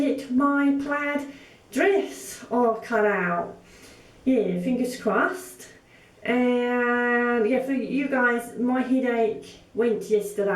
my plaid dress all cut out. Yeah, fingers crossed. And yeah, for you guys, my headache went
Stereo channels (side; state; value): both; identical; correlation 1.00